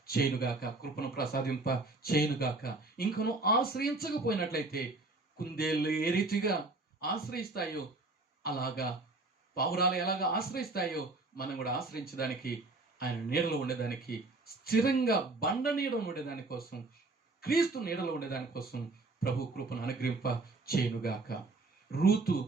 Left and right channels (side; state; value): left; quieter; 3.2 dB